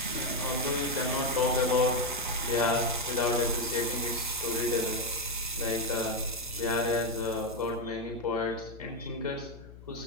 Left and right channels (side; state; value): left; noise; hum, 17 dB below the sound